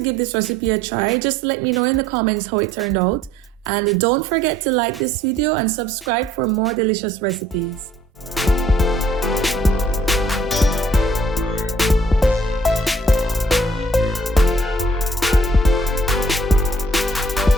this recipe a try, just let me know in the comments how it turned out. And don't forget to like this video and subscribe for more delicious recipes.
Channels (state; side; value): normal; both; correlation 0.60